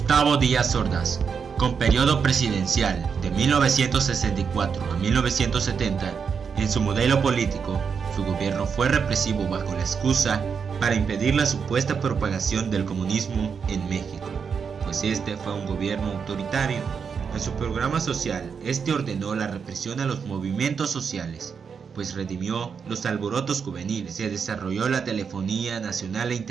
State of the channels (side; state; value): left; quieter; 6.3 dB